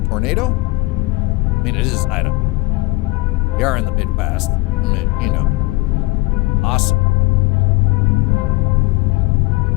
Tornado? I mean, it is Idaho. We are in the Midwest. I mean, you know. Awesome.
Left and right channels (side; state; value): right; quieter; 22.1 dB